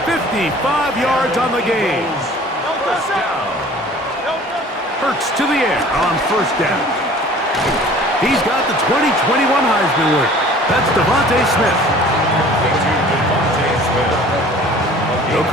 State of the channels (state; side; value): normal; both; correlation 0.48